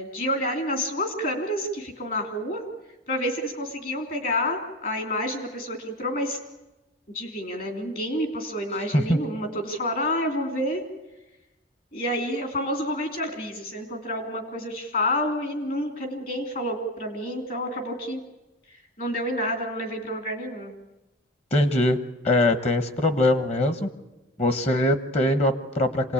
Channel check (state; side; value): normal; both; correlation 0.31